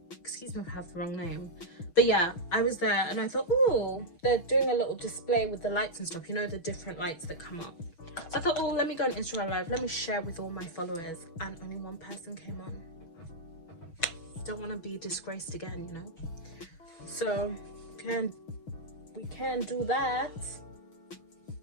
Excuse me if I have the wrong name, but yeah, I was there and I thought, oh, they're doing a little display with the lights and stuff, you know, the different lights that come up. So I thought, oh, let me go on Instagram live, let me share with all my followers, and only one person came on. Don't want to be disgraced again, you know. So we can do that.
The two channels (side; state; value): right; late; 6.2 ms